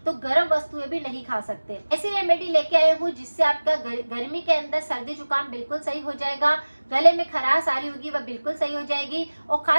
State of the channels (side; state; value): both; inverted; correlation -1.00